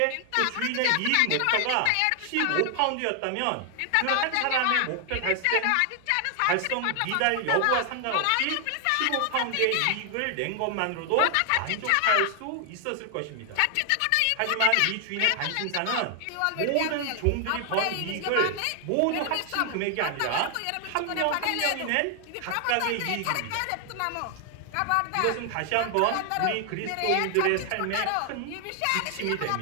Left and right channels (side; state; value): both; different; correlation 0.00